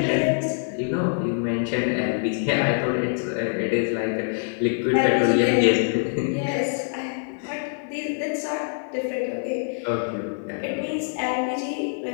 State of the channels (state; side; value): silent; right; digital silence